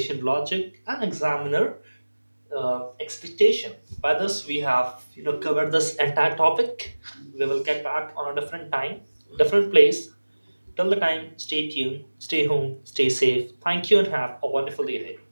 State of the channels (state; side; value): inverted; both; correlation -1.00